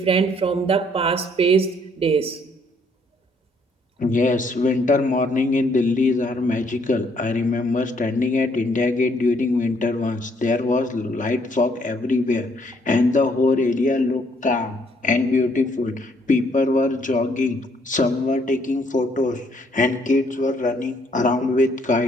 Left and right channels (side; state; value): both; normal; correlation 0.67